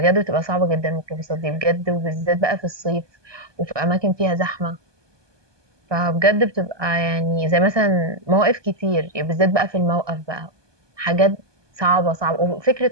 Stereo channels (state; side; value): late; left; 1.2 ms